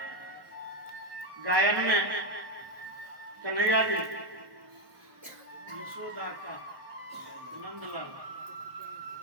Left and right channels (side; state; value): left; late; 1.1 ms